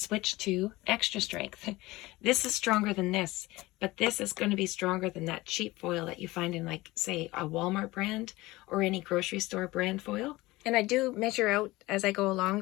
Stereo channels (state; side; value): quieter; right; 19.9 dB